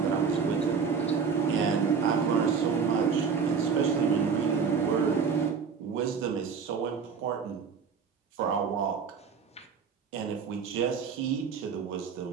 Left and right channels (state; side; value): quieter; left; 6.0 dB